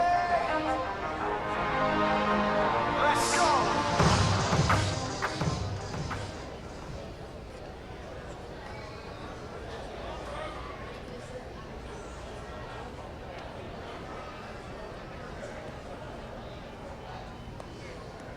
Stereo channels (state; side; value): identical; both; correlation 1.00